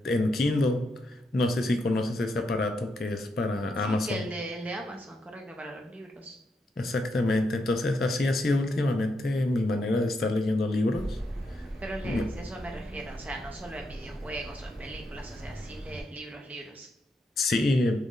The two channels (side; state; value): both; normal; correlation 0.81